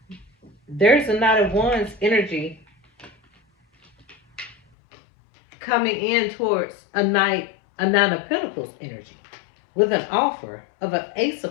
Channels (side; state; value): right; drops out; at 4.5 s